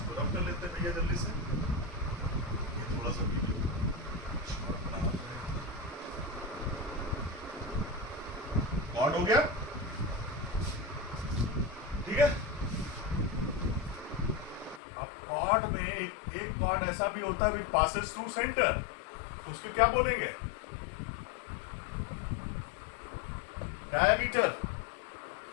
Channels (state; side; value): drops out; right; at 14.8 s